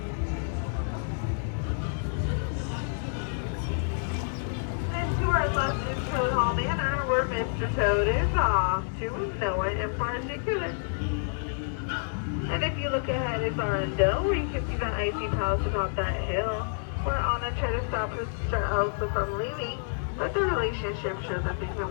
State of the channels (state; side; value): silent; right; 59 dB below the other